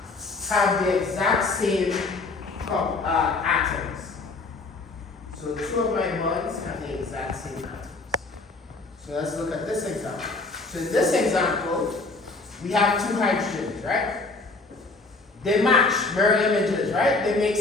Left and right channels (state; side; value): quieter; right; 3.6 dB